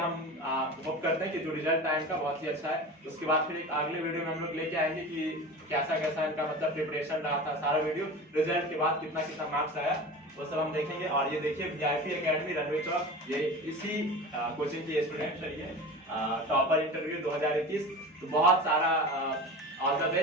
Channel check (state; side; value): normal; both; correlation 0.32